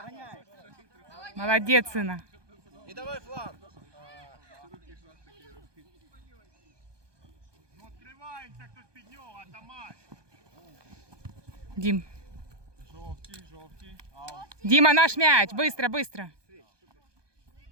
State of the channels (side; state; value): left; late; 1.2 ms